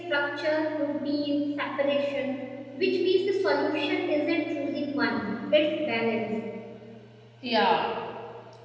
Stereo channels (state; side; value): identical; both; correlation 1.00